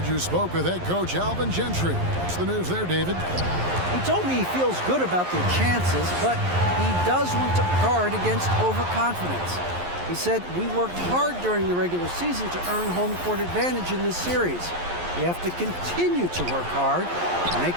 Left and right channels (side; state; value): left; late; 11 ms